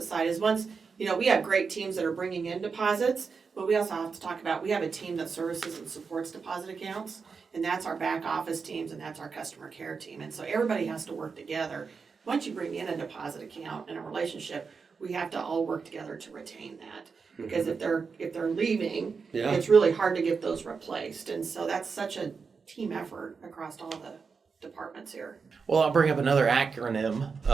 side, is once, we have great teams that are bringing in deposits, but we also have to talk about, we have a team that services and supports deposit accounts, and that's our back office teams, and that's our customer care team. And so everybody has to work together. Once you bring in a deposit account and a relationship, we have to all work together to retain that. Because if they're leaving, it's really hard to get those replaced. And so that's such a team effort across all the departments here. Well, I'll bring up another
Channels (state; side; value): quieter; left; 5.3 dB